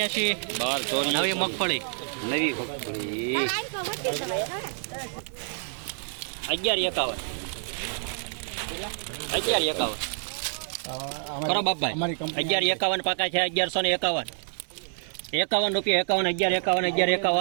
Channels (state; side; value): silent; left; 60 dB below the other